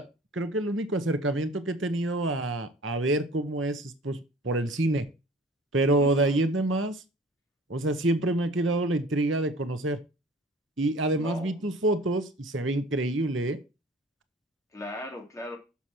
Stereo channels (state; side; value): normal; both; correlation 0.46